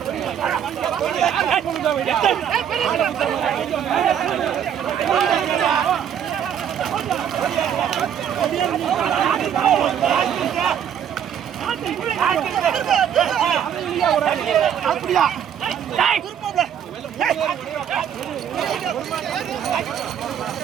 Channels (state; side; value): quieter; left; 8.9 dB